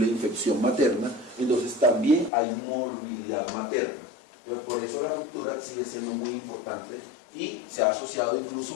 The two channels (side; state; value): right; drops out; at 2.3 s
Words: infección materna, entonces también hay morbilidad materna. Entonces, por eso la ruptura sigue siendo muy importante y se ha asociado